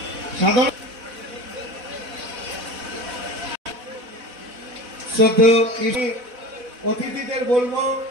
সাধারণ অতিথিদের বলবো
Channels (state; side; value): late; left; 4.1 ms